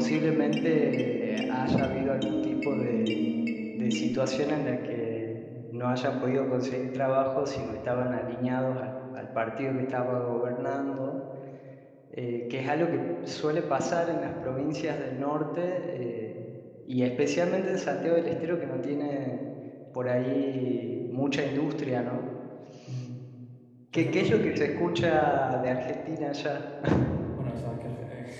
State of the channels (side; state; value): both; identical; correlation 1.00